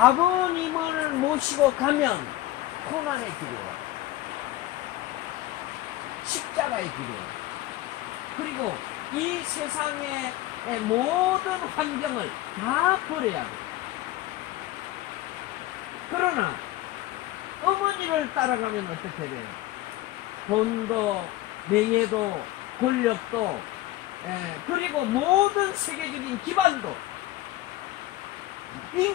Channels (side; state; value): right; quieter; 16.0 dB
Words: 모시고 가면 고난의 길이에요. 십자가의 길이에요. 그리고 이 세상의 모든 환경을 다 버려야 돼요. 그러나 어머니를 따라가면 어떻게 돼요? 돈도 명예도 권력도 그리고 모든 세계적인 기반도